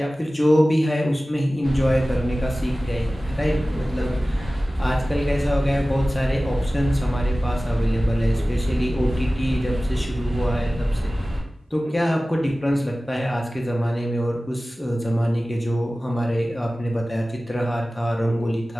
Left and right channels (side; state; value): both; normal; correlation 0.97